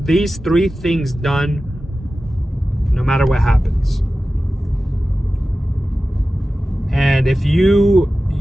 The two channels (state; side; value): normal; both; correlation 0.94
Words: things done, no matter what happens. And if you